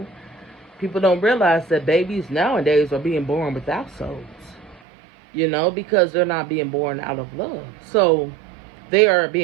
People don't realize that babies nowadays are being born without souls, because they're not being born out of love. So they are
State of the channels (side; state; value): left; drops out; at 4.8 s